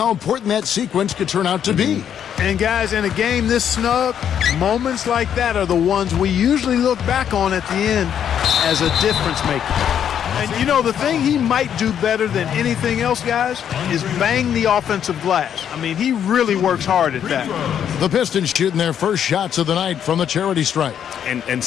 important that sequence could turn out to be. And, guys, in a game this snug, moments like that are the ones we usually look back on at the end as a difference maker. And, you know, the thing he might do better than anything else, guys, is bang the offensive glass. I mean, he really works hard at that. The Pistons shooting their first shots of the night from the charity stripe. And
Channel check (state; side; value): quieter; right; 9.0 dB